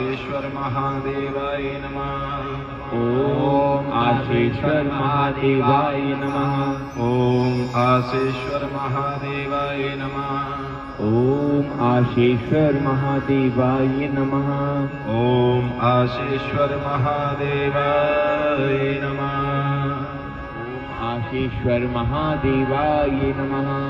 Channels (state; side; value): identical; both; correlation 1.00